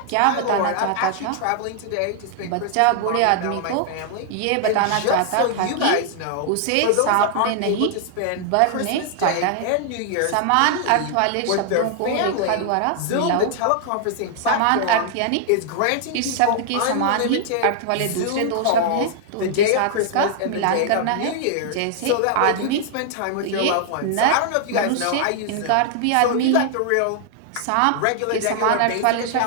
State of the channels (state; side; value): different; both; correlation 0.00